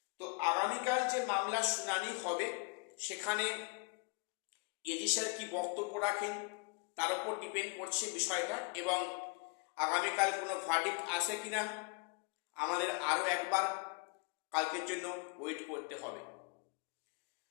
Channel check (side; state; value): right; quieter; 33.1 dB